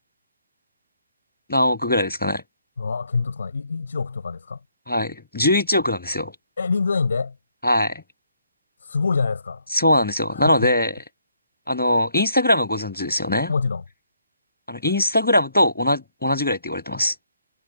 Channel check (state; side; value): inverted; both; correlation -0.73